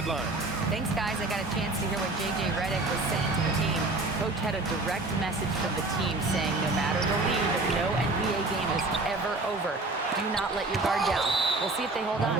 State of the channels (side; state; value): left; quieter; 3.1 dB